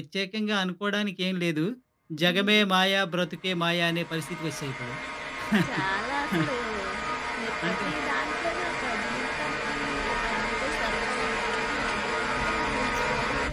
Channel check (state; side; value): identical; both; correlation 1.00